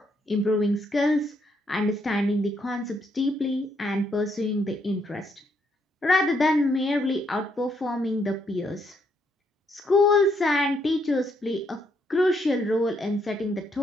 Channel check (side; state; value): both; normal; correlation 0.74